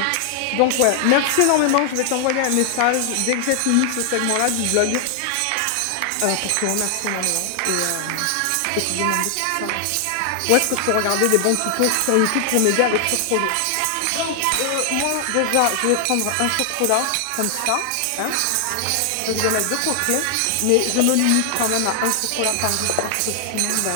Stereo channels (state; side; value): different; both; correlation 0.00